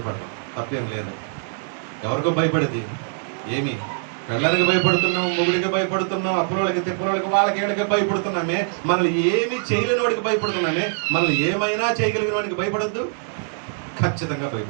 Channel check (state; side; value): silent; left; digital silence